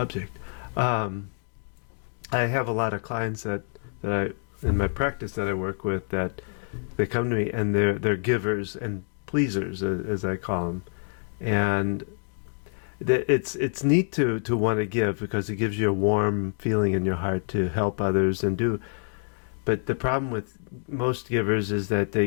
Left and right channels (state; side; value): silent; right; 57 dB below the other